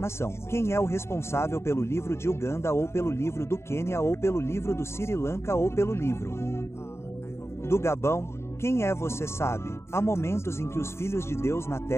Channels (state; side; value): late; right; 0.13 ms